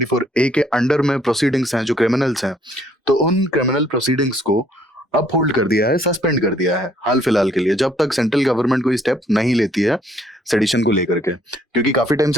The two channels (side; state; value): both; normal; correlation 0.65